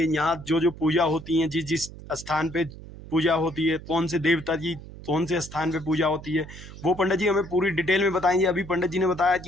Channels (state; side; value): noise; right; hum, 15 dB below the sound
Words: यहाँ जो जो पूजा होती है, जिस जिस स्थान पे पूजा होती है, कौन से देवता की कौन से स्थान पे पूजा होती है, वो पंडित जी हमें पूरी डिटेल में बताएंगे। अभी पंडित जी ने बताया